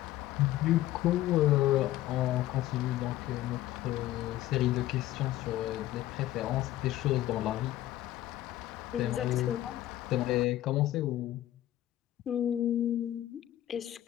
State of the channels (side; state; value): right; quieter; 14.3 dB